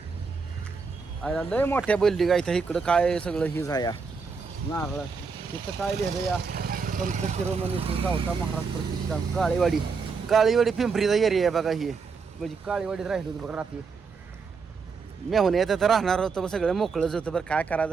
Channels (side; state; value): left; quieter; 5.1 dB